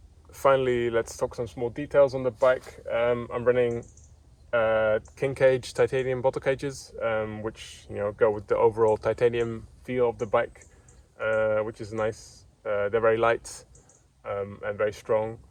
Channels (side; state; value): both; identical; correlation 1.00